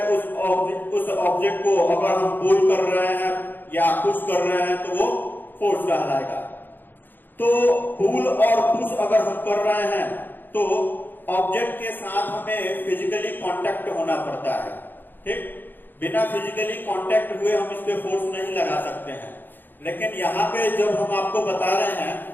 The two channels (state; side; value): late; right; 0.092 ms